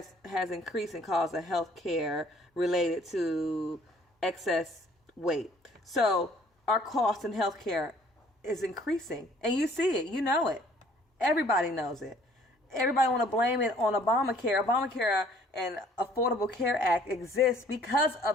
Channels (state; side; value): normal; both; correlation 0.58